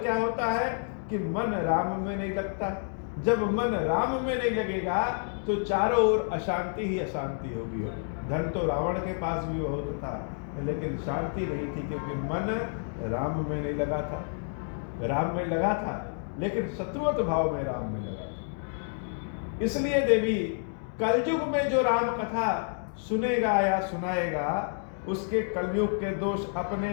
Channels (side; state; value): right; silent; 57 dB below the other